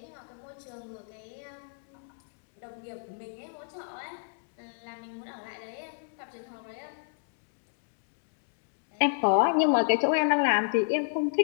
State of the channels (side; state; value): right; silent; digital silence